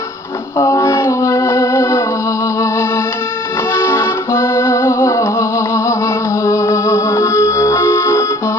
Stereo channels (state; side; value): normal; both; correlation 0.54